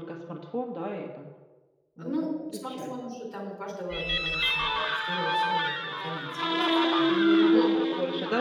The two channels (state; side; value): identical; both; correlation 1.00